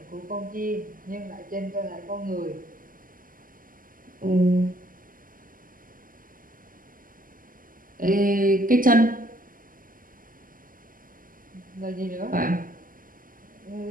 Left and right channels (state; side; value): late; left; 0.41 ms